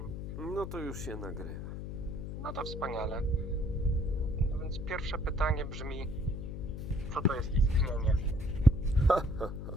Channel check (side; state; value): left; noise; hum, 6 dB below the sound